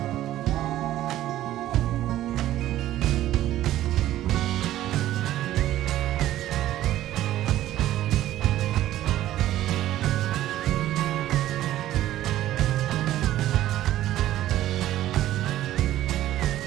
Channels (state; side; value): quieter; left; 13.7 dB